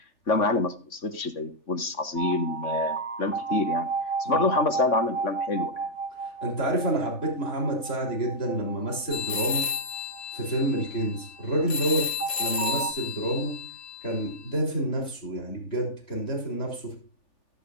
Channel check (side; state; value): right; late; 3.4 ms